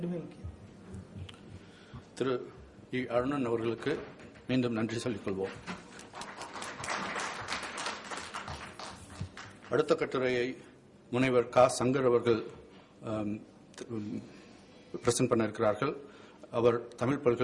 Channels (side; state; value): both; identical; correlation 1.00